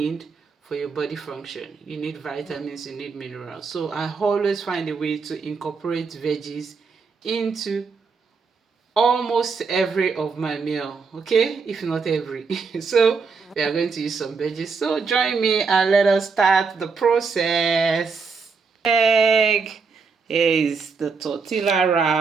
for your body function. You need vitamins, you need minerals. So I always find a way to incorporate veggies into almost every of my meal, okay, if not every. So we are going to use some veggies, so join me and let us start the process. Egg. Here is the tortilla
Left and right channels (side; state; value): left; quieter; 5.0 dB